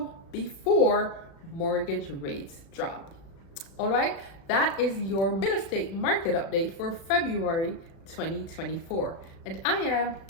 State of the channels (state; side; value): late; right; 36 ms